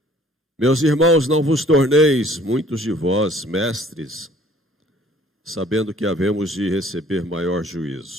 Meus irmãos, não vos torneis, muitos de vós, mestres, sabendo que havemos de receber maior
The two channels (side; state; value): both; normal; correlation 0.55